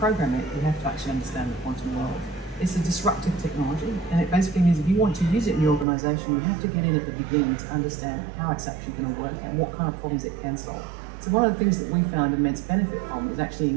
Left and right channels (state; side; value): drops out; left; at 5.9 s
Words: it, you have to actually understand the quantum world. It's a disruptive technology, and it basically means if you want to use it in your organization, you have to get in at the beginning to understand how it's actually going to work and what kind of problems it can solve. So one of the things that we found immense benefit from is actually